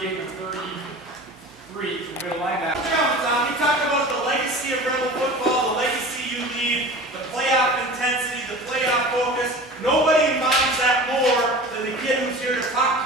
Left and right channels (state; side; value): normal; both; correlation 0.37